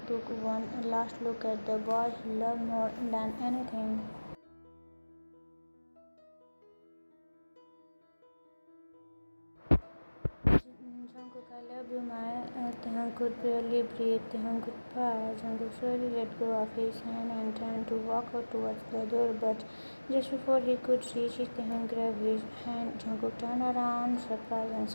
took one last look at the boy he loved more than anything. Jungkook, I love you, my Taehyung could barely breathe. Taehyung, goodbye. Jungkook slowly let go of his hand and turned to walk out towards the door, but just before he could reach it, Taehyung grabbed his hand. Jungkook turned around, surprised, and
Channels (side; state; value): both; inverted; correlation -1.00